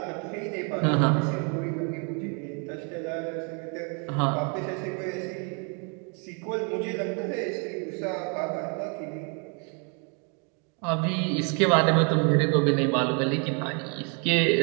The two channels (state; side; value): quieter; left; 36.9 dB